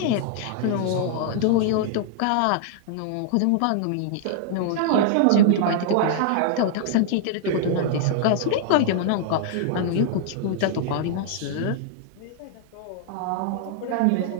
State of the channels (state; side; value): different; both; correlation -0.01